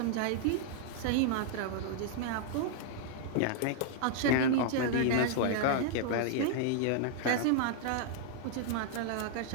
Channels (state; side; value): different; both; correlation -0.01